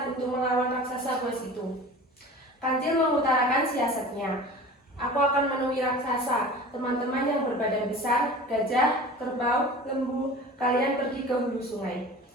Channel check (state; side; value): normal; both; correlation 0.38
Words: untuk melawan raksasa buas itu." Kancil mengutarakan siasatnya. "Aku akan menemui raksasa. Teman-teman yang berbadan besar, gajah, kerbau, lembu, kalian pergi ke hulu sungai.